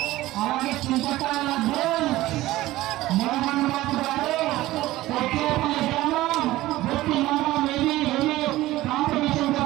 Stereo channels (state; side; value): quieter; left; 16.9 dB